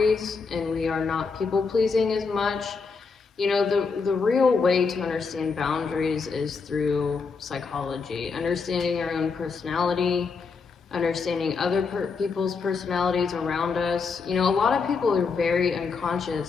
and we are not people pleasing as much. You know, the real way to understand boundaries is through psychology, understanding our own personality, understanding other people's personalities around us. You know, a lot of people are very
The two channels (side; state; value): right; quieter; 4.9 dB